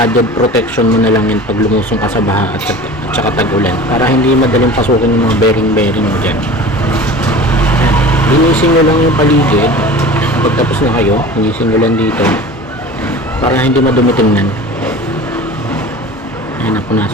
protection mo na lang yan pag lumusong ka sa baha at saka tag-ulan. Para hindi madaling pasukin yung mga bearing mo dyan. Linisin nyo lang yung paligid. Pagtapos na kayo, linisin nyo lang dito. Para hindi madumi tingnan. Ayan,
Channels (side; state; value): both; normal; correlation 0.38